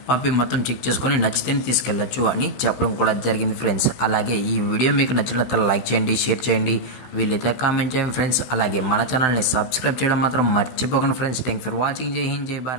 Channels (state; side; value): late; right; 16 ms